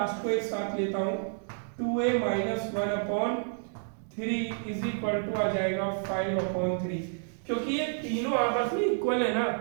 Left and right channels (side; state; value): left; silent; 58 dB below the other